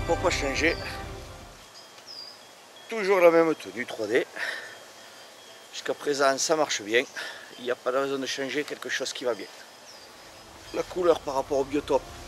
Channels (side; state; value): both; identical; correlation 1.00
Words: Pourquoi changer? Toujours la même tenue 3D. Jusqu'à présent ça marche bien. Il n'y a pas de raison de changer quelque chose qui va bien. La couleur par rapport au biotope,